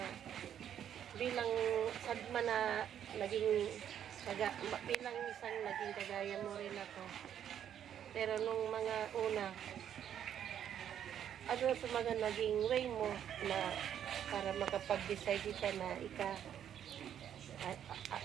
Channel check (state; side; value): quieter; left; 9.6 dB